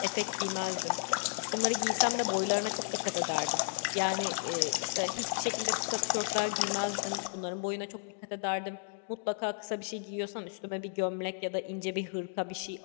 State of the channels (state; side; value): silent; right; digital silence